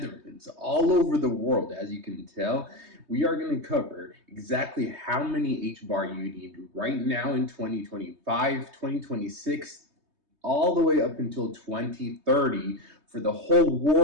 all over the world. As you can tell, we are going to cover exactly how many HBAR you need right now in 2025, 2026, all the way up until 2030 for the whole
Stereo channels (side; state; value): left; late; 3.2 ms